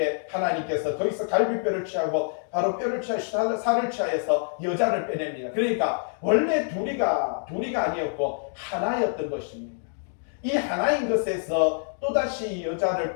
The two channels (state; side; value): silent; right; digital silence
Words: 하나님께서 거기서 갈비뼈를 취하고 바로 뼈를 취하여 살을 취하여서 여자를 빼냅니다. 그러니까 원래 둘이가 아니었고 하나였던 것입니다. 이 하나인 것에서 또다시 여자를